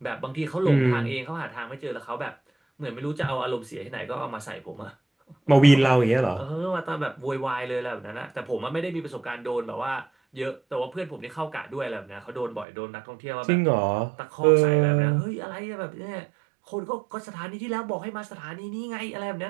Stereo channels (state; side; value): drops out; left; at 12.7 s